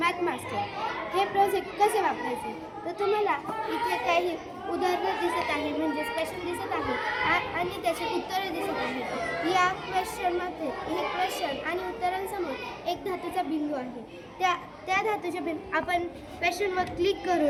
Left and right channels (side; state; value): both; identical; correlation 1.00